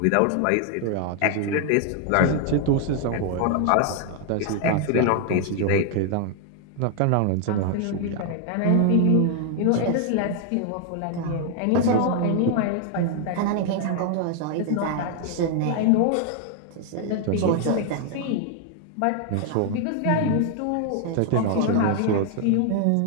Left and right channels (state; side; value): different; both; correlation 0.00